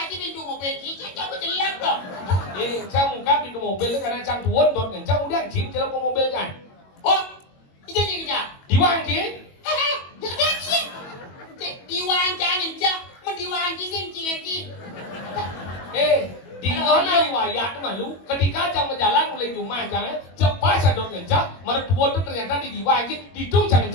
chứ đi mua mobil chỉ cho cái lắm rồi. Saya muka pintu mobil karena cang tuan don kencang udah cip je ke mobil kan. Ủa? Itu gì kìa? Diwang je. Được đấy chứ. Đi hoang cha nhìn cha, mình đi hoang chứ xem chuyện gì. Di mana riwayat tu malu ketika jang berjalan mulai rumah jangan cepat sadar kencang mertua tu ternyata di diwang je di tung jangan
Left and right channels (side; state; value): right; late; 22 ms